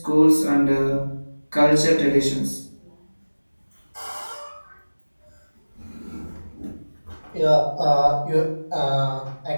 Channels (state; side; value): inverted; both; correlation -1.00